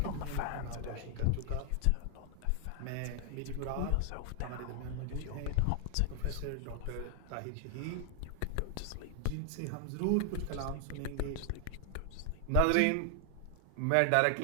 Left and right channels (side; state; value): both; different; correlation 0.00